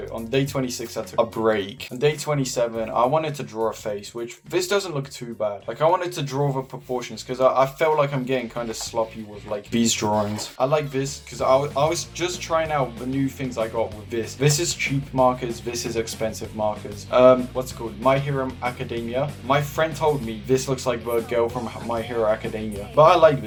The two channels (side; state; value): both; identical; correlation 1.00